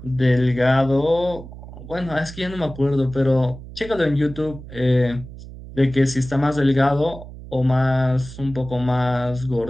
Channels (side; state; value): right; noise; hum, 14 dB below the sound